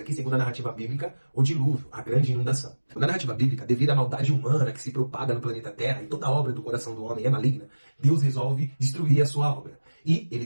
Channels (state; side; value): inverted; both; correlation -1.00